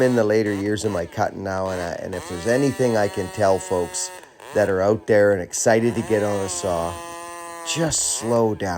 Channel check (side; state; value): both; identical; correlation 1.00